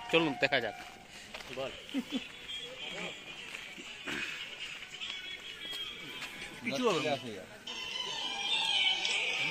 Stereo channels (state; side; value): identical; both; correlation 1.00